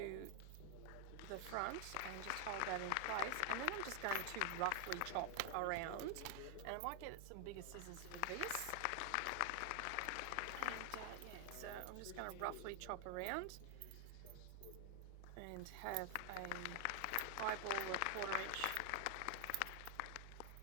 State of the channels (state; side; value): different; both; correlation 0.00